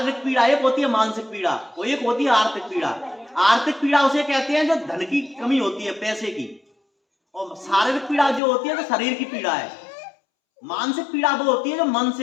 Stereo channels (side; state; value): right; drops out; at 8.4 s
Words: पीड़ा, एक होती है मानसिक पीड़ा, और एक होती है आर्थिक पीड़ा। आर्थिक पीड़ा उसे कहते हैं जो धन की कमी होती है, पैसे की, और शारीरिक पीड़ा जो होती है जो शरीर की पीड़ा है। मानसिक पीड़ा वो होती है जो मन